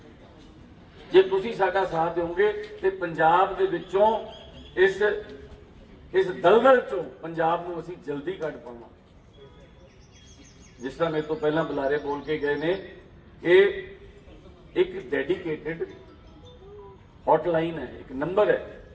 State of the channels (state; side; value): identical; both; correlation 1.00